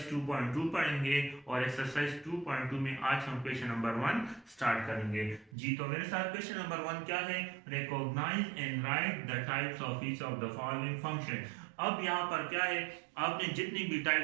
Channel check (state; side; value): drops out; left; at 5.5 s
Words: 2.2 पढ़ेंगे और एक्सरसाइज 2.2 में आज हम क्वेश्चन नंबर 1 स्टार्ट करेंगे। जी तो मेरे साथ क्वेश्चन नंबर 1 क्या है? Recognise and write the types of each of the following function. अब यहाँ पर क्या है, आपने जितनी भी